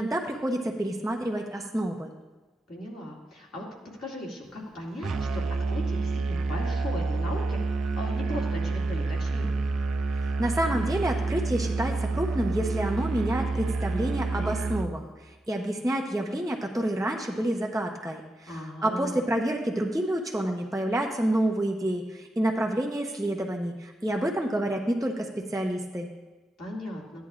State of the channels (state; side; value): normal; both; correlation 0.87